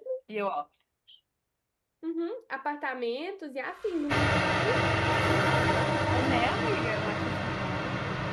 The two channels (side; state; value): both; identical; correlation 1.00